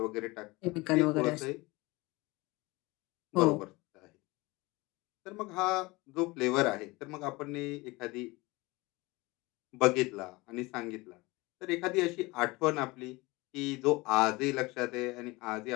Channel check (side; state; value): right; quieter; 22.9 dB